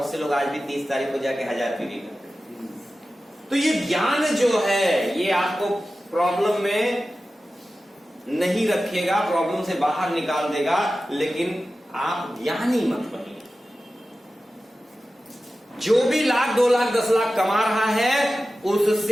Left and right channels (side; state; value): both; normal; correlation 0.94